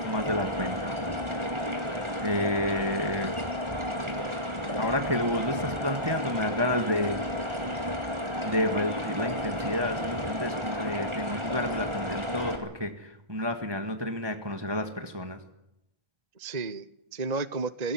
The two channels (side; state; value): left; late; 1.4 ms